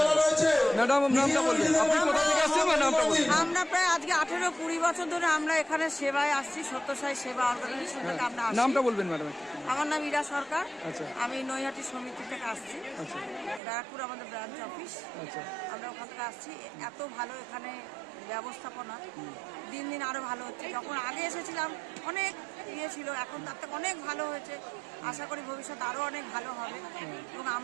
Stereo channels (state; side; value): drops out; left; at 13.6 s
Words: ম্যাডাম, নামটা বলবেন, আপনি কোথা থেকে আসছেন? নামটা বলবেন। আমরা প্রায় আজকে 18-20 বছর ধরে আমরা এখানে সেবায় আসছি, সত্যসাই সেবা অর্গানাইজেশন থেকে আমরা আসছি। নামটা বলবেন ম্যাডাম। আমার নাম ইরা সরকার। আচ্ছা। আমি নৈহাটি সমিতি থেকে আসছি। আচ্ছা। ব্যারাকপুর আমাদের ব্রাঞ্চ অফিস। আচ্ছা। আমরা ওখান থেকে আসছি। এত ভালো এখানে ব্যবস্থাপনা, দিন দিন আরো ভালো হচ্ছে। যখন আগে এসেছিলাম অনেক ইয়ে ছিল, এখন তার থেকে অনেক ভালো হয়েছে। আশা করি ভবিষ্যতে আরো অনেক ভালো হবে এবং